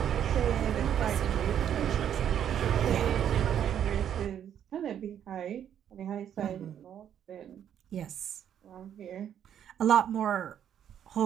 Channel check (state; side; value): quieter; left; 9.6 dB